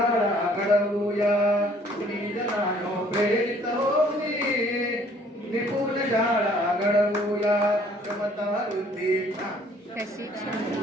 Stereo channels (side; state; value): both; normal; correlation 0.59